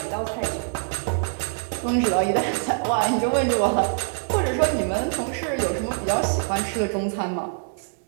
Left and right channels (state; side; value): silent; left; 62 dB below the other